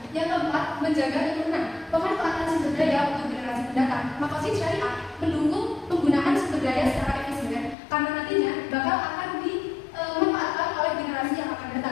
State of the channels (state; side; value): drops out; right; at 7.8 s